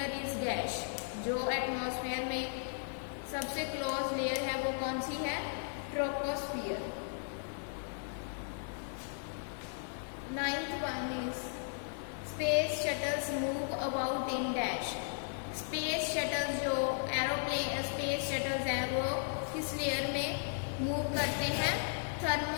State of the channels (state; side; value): silent; right; digital silence